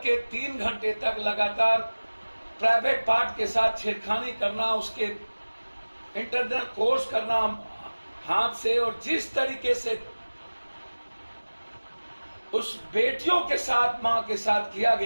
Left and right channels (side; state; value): both; inverted; correlation -1.00